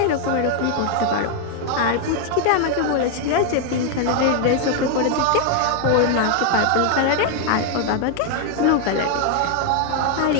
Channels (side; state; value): both; different; correlation 0.00